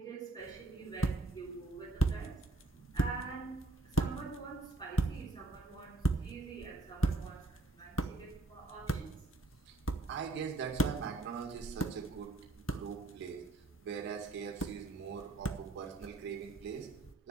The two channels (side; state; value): left; quieter; 3.1 dB